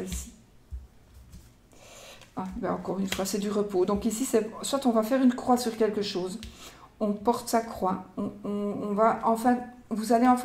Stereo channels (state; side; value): identical; both; correlation 1.00